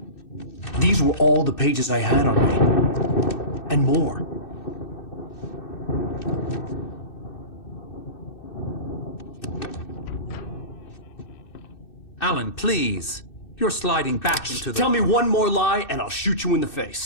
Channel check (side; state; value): right; late; 2.6 ms